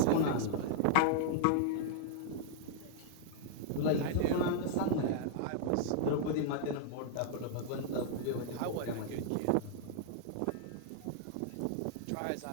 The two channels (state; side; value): different; both; correlation -0.01